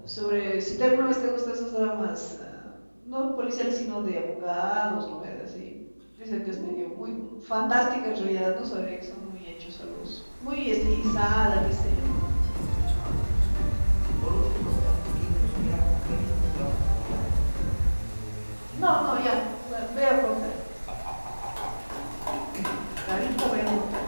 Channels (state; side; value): inverted; both; correlation -1.00